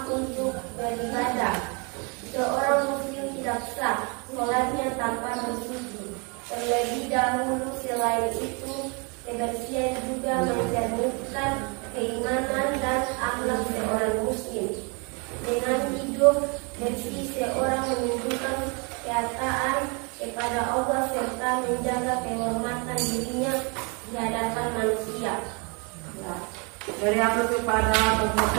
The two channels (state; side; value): quieter; left; 32.9 dB